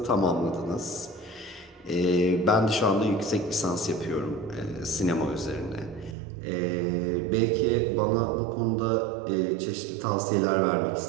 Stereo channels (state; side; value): drops out; left; at 6.2 s